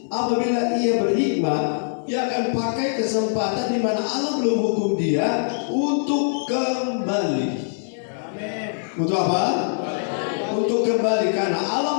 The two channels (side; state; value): right; silent; 61 dB below the other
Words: apabila ia berhikmat, dia akan pakai kesempatan di mana Allah belum hukum dia untuk kembali. Untuk apa? Untuk kembali, karena